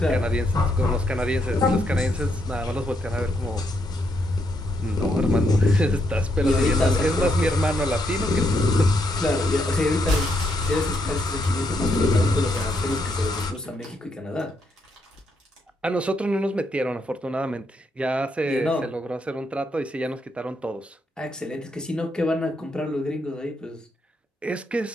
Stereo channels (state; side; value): normal; both; correlation 0.76